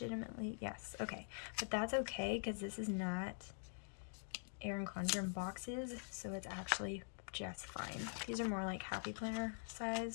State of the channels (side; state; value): right; silent; digital silence